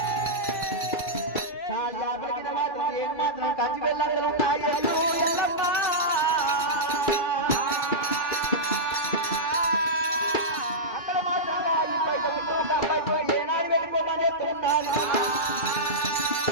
చాల్యాపురికి మాత్రం ఏం మాత్రం కంచి వెళ్ళందరూ ఉన్నాయి ఎల్లు ఎల్లమ్మ అక్కడ మాత్రం ఈ బయట అబ్బాయి ఏనాడు వెళ్ళిపోమని చెప్తున్నాను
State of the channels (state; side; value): late; right; 2.2 ms